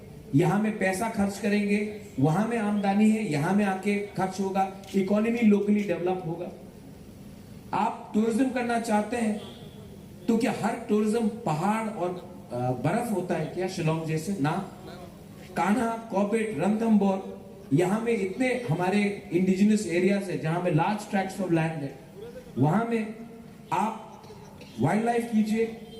यहां में पैसा खर्च करेंगे, वहां में आमदनी है, यहां में आके खर्च होगा, इकोनॉमी लोकली डेवलप होगा। आप टूरिज्म करना चाहते हैं तो क्या हर टूरिज्म पहाड़ और बर्फ होता है क्या शिलोंग जैसे? ना। कान्हा, कॉर्बेट, रणथंबोर, यहां में इतने हमारे इंडिजिनस एरियाज है जहां में लार्ज ट्रैक्ट्स ऑफ लैंड है, वहां में आप वाइल्ड लाइफ कीजिए,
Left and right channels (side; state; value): both; identical; correlation 1.00